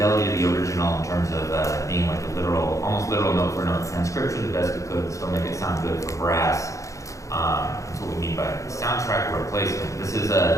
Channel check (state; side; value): late; right; 0.15 ms